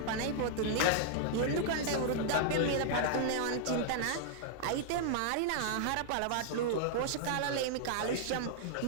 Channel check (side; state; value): both; different; correlation -0.01